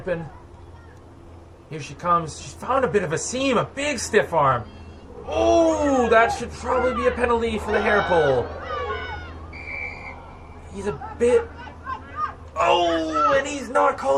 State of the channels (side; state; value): both; identical; correlation 1.00